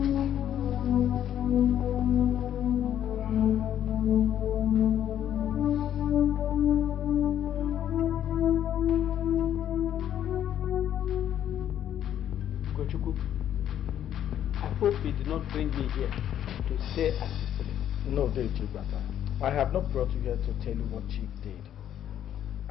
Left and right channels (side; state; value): right; quieter; 10.5 dB